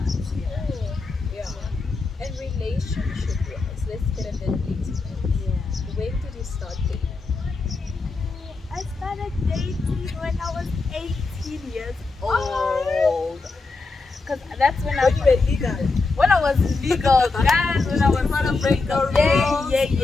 Yeah. Ooh. Yeah. And relationship wise, let's get a little intimate. Yeah. When did you start dating? I started dating when I was 18 years Oh. old. Because that's when When you were legal. when I was legal, guys, when I was Want to break the rules?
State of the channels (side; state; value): right; quieter; 3.8 dB